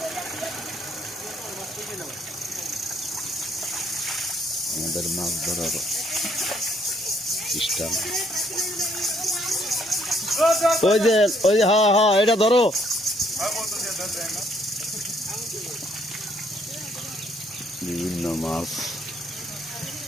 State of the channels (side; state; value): both; normal; correlation 0.67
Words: আমাদের মাছ ধরার সিস্টেম। ওই যে হ্যাঁ হ্যাঁ এটা ধরো। বিভিন্ন মাছ